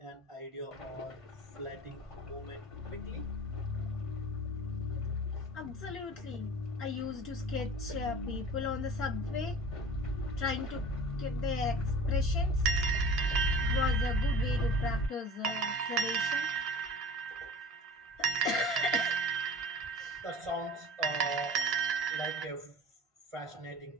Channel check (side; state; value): both; normal; correlation 0.40